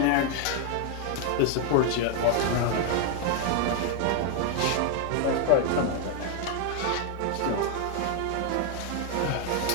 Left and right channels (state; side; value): different; both; correlation 0.00